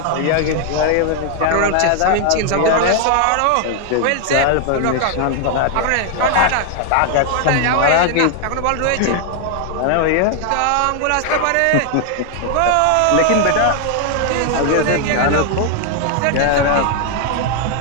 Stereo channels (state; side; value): different; both; correlation 0.00